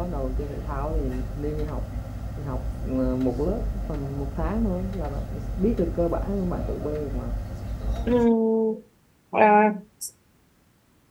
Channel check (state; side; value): identical; both; correlation 1.00